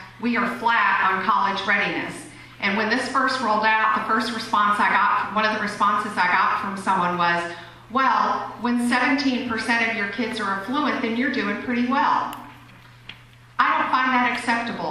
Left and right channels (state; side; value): identical; both; correlation 1.00